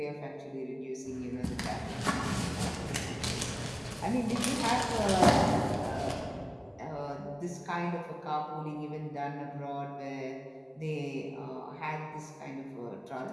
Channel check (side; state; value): both; identical; correlation 1.00